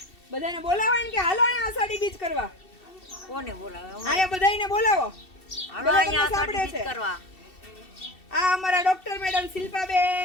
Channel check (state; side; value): late; right; 2.7 ms